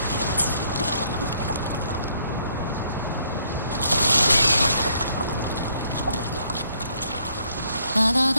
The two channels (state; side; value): inverted; both; correlation -0.68